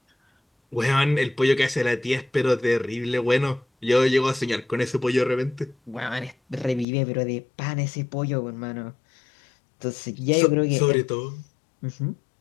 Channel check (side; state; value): right; drops out; at 6.9 s